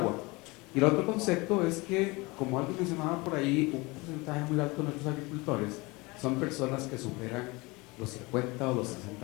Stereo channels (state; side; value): quieter; right; 24.6 dB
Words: Y el otro concepto es que, como alguien mencionaba por ahí, un porcentaje muy alto de nuestros agricultores son personas que superan los 50 o los